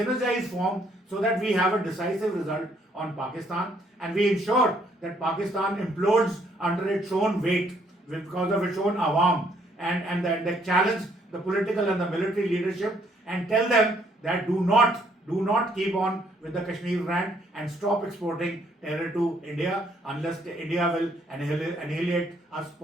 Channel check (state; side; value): normal; both; correlation 0.68